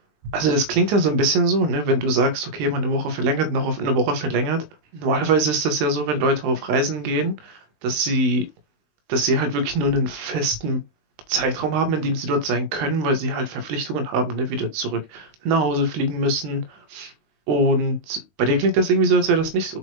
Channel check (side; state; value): left; late; 19 ms